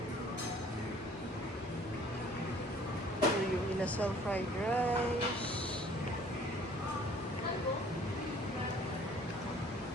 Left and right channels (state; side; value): normal; both; correlation 0.54